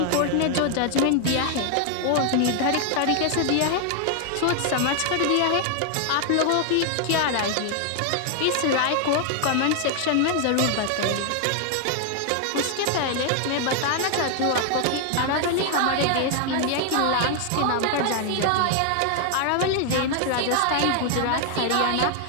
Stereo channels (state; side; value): different; both; correlation 0.00